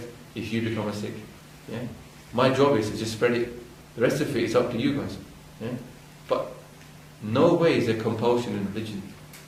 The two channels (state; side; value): identical; both; correlation 1.00